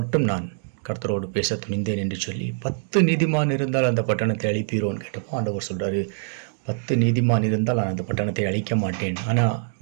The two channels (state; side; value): silent; left; digital silence